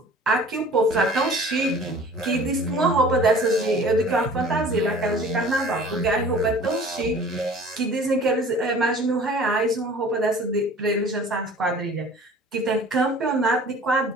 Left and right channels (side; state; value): both; normal; correlation 0.46